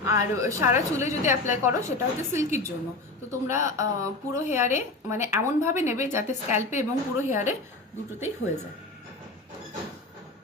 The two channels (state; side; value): quieter; right; 3.1 dB